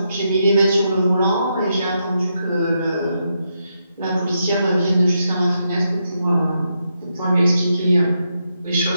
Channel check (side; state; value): both; inverted; correlation -0.82